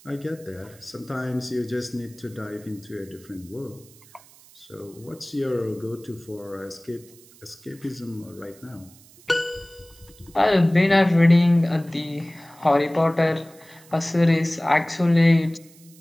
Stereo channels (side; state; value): right; noise; hiss, 25 dB below the sound